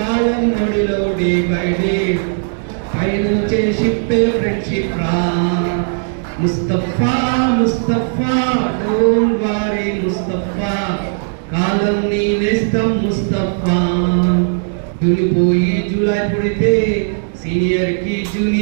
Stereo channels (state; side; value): silent; left; digital silence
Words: నొడిలో డే బై డే పైనుంచే షిప్పే ఫ్రెండ్షిప్ రా. ముస్తఫా ముస్తఫా డోంట్ వరీ ముస్తఫా, కాలం నీ నేస్తం ముస్తఫా. దులిపోయి జూలై పుడితే సీనియర్ కి